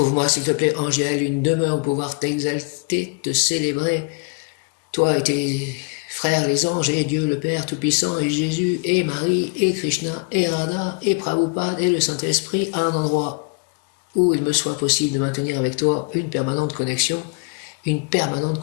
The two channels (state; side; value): quieter; right; 32.5 dB